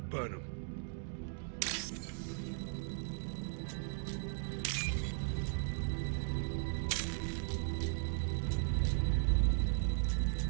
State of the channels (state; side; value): silent; left; 53 dB below the other